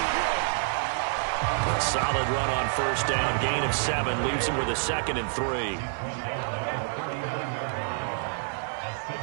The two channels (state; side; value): silent; left; digital silence